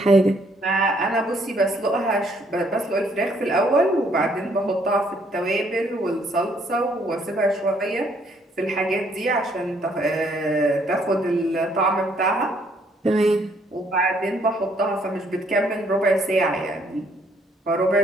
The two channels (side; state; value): both; normal; correlation 0.67